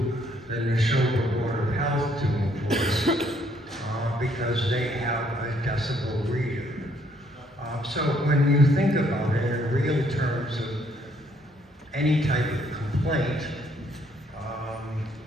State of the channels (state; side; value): normal; both; correlation 0.67